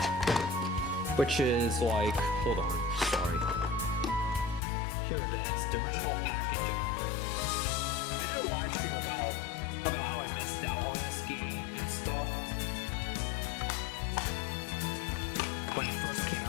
which is like, hold on, sorry. Here it is, the original packaging. I did a live stream about how I missed out on this game and stuff when it first came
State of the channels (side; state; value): right; drops out; at 4.6 s